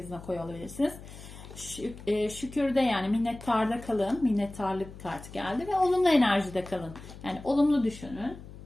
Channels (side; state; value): left; noise; hum, 15 dB below the sound